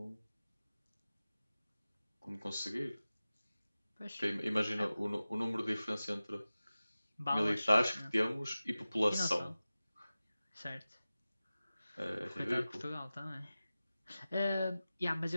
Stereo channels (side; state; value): both; inverted; correlation -0.96